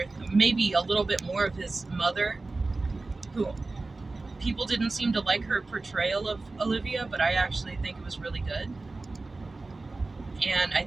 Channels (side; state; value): left; quieter; 3.4 dB